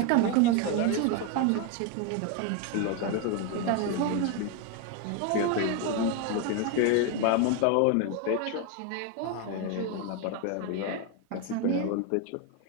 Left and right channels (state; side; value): different; both; correlation 0.02